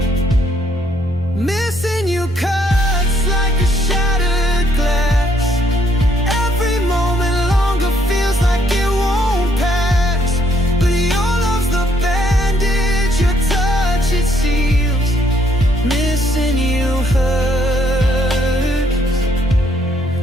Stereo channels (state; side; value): normal; both; correlation 0.69